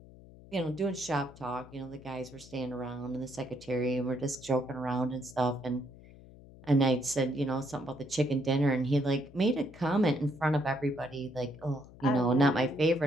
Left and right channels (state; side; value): noise; left; hum, 20 dB below the sound